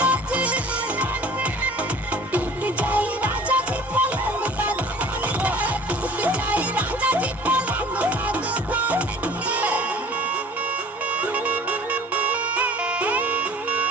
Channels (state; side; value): normal; both; correlation 0.49